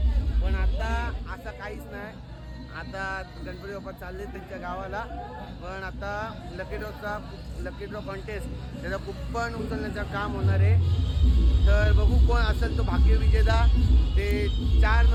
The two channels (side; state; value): both; identical; correlation 1.00